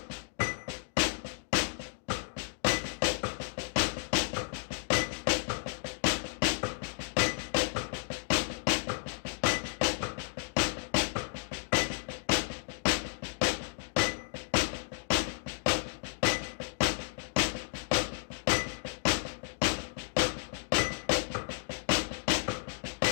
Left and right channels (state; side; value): silent; right; digital silence